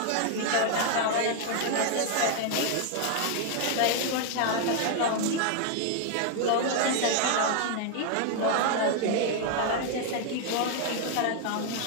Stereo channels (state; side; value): different; both; correlation 0.00